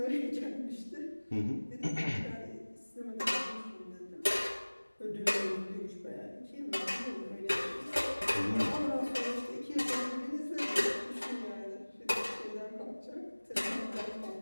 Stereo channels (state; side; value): inverted; both; correlation -1.00